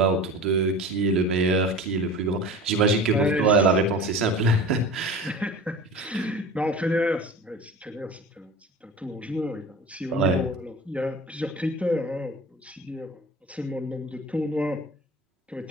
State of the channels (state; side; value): normal; both; correlation 0.36